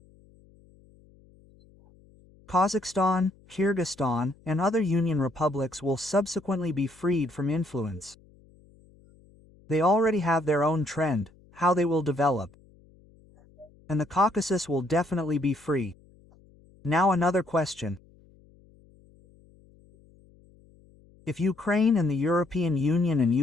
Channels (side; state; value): left; noise; hum, 28 dB below the sound